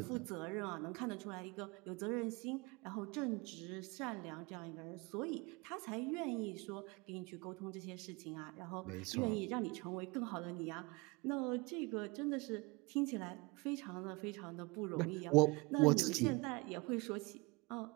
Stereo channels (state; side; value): quieter; left; 26.0 dB